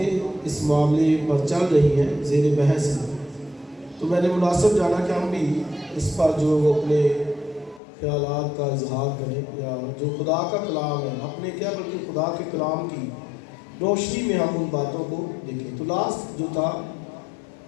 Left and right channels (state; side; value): drops out; right; at 7.8 s